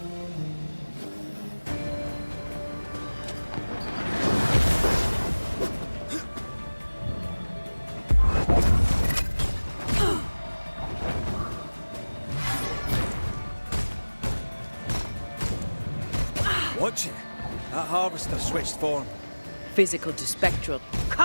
Watch it. That harvester switched form. Physical to spectral.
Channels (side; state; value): both; inverted; correlation -1.00